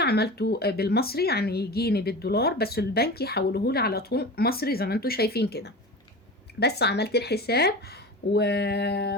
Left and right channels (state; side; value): normal; both; correlation 0.31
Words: بالمصري، يعني يجيني بالدولار، بس البنك يحوله لي على طول مصري زي ما انتم شايفين كده. بس عملت الحساب